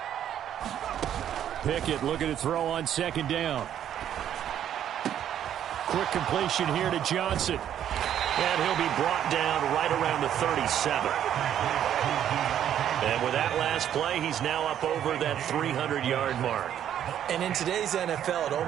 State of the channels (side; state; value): left; quieter; 10.3 dB